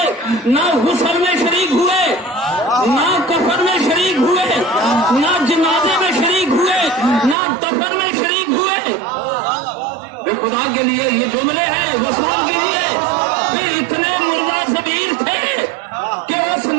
نہ غسل میں شریک ہوئے، نہ کفن میں شریک ہوئے، نہ جنازے میں شریک ہوئے، نہ دفن میں شریک ہوئے۔ خدا کے لیے یہ جملے ہیں، وصول کیجیے، بھی اتنے مردہ ضمیر تھے کہ اس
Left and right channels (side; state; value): left; drops out; at 7.4 s